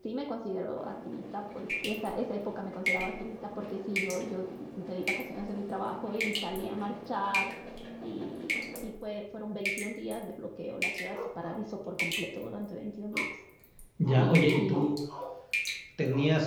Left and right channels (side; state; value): both; identical; correlation 1.00